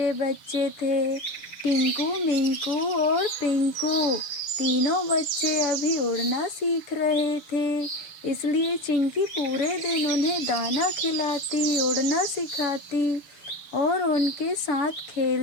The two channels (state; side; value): late; right; 6.7 ms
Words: बच्चे थे, टिंकू, मिंकू और पिंकू। तीनों बच्चे अभी उड़ना सीख रहे थे, इसलिए चिंकी पूरे दिन उन्हें दाना खिलाती, उड़ना सिखाती और उनके साथ